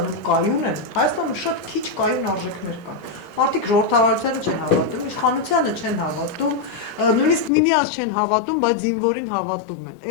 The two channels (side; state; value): right; drops out; at 7.5 s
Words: կայուն են, Հայաստանում շատ քիչ կայուն արժեքներ կան։ Մարդիկ ժողովրդավարությանը չեն հավատում, իշխանությանը չեն հավատում, նույնիսկ միմյանց չեն հավատում, բայց զինվորին հավատում